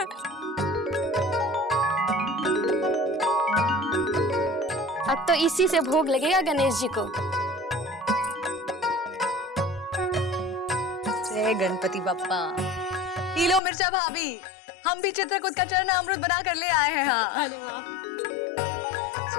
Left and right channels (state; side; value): drops out; right; at 13.6 s